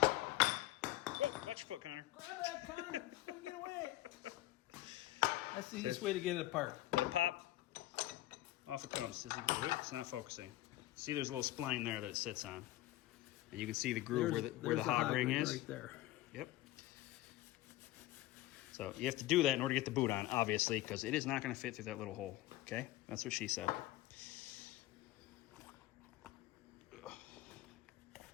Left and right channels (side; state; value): right; quieter; 16.3 dB